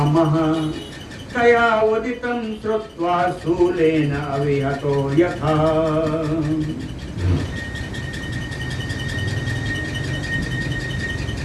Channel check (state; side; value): identical; both; correlation 1.00